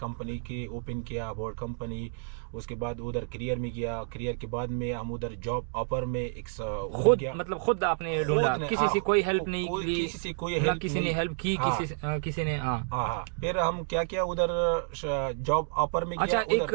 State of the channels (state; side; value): silent; left; digital silence